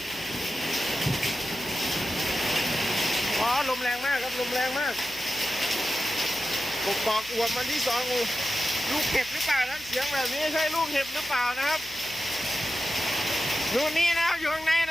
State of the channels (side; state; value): left; noise; hum, 22 dB below the sound